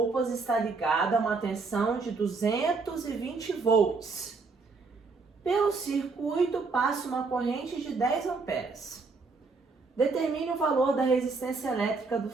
está ligado a uma tensão de 220 volts. Pelo circuito passa uma corrente de 10 amperes. Determine o valor da resistência elétrica do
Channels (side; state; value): left; quieter; 4.2 dB